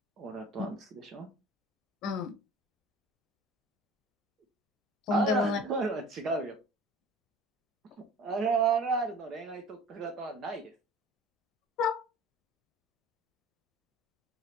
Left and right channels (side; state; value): both; normal; correlation 0.43